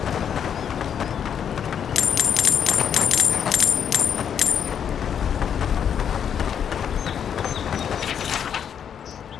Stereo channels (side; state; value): right; quieter; 8.3 dB